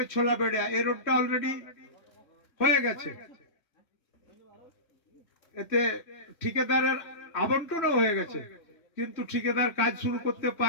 ছোলাবেড়িয়া এই রোডটা অলরেডি হয়ে গেছে। এতে ঠিকাদারের আবন্টনও হয়ে গেছে, কিন্তু ঠিকাদার কাজ শুরু করতে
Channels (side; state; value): right; late; 3.1 ms